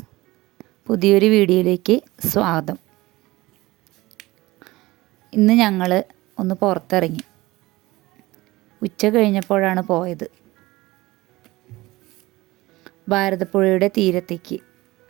പുതിയൊരു വീഡിയോയിലേക്ക് സ്വാഗതം. ഇന്ന് ഞങ്ങൾ ഒന്ന് പുറത്തിറങ്ങി. ഉച്ച കഴിഞ്ഞപ്പോഴാണ് പോയത്. ഭാരതപ്പുഴയുടെ തീരത്തേക്ക്.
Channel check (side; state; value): left; quieter; 19.6 dB